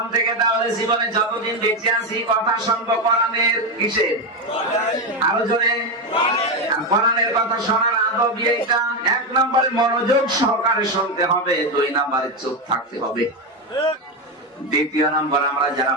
থেকে তাহলে জীবনে যতদিন বেঁচে আছি কথা শুনবো কোরআনের। কিসের? আরো জোরে। কোরআনের কথা শোনার আদব এইটা। 1 নম্বরে মনোযোগ সহকারে শুনতে হবে, 2 নম্বরে চুপ থাকতে হবে। 2 নম্বর, আমরা যারা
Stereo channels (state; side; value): normal; both; correlation 0.11